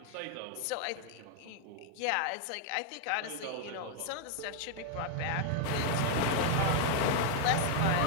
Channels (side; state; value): both; different; correlation 0.00